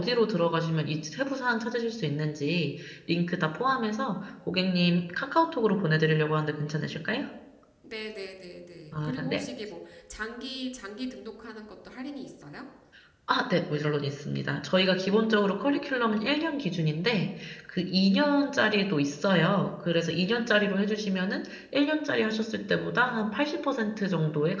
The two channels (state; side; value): identical; both; correlation 1.00